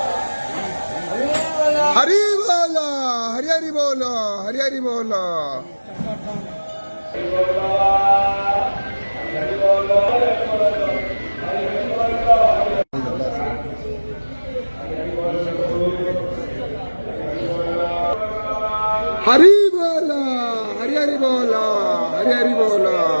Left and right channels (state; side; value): inverted; both; correlation -1.00